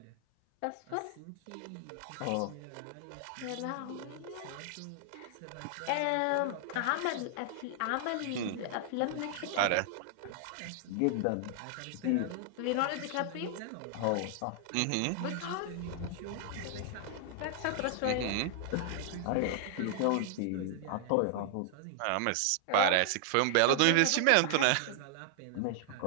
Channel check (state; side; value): different; both; correlation -0.01